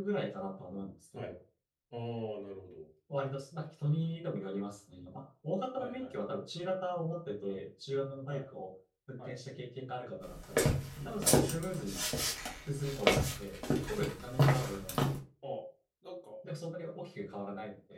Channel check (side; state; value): both; identical; correlation 1.00